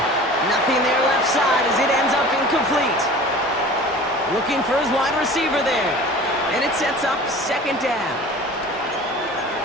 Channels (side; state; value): both; normal; correlation 0.41